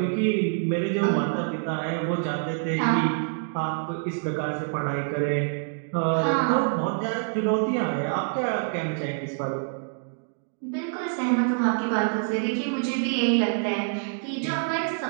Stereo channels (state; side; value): silent; left; digital silence